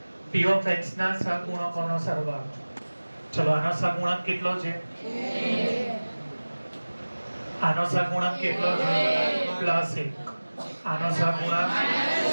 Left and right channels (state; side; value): inverted; both; correlation -1.00